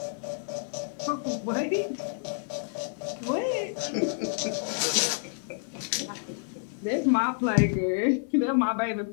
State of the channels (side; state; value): right; silent; 58 dB below the other